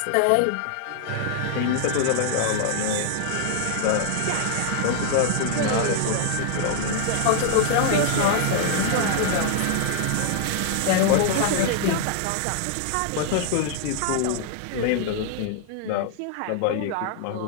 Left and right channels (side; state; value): both; different; correlation 0.00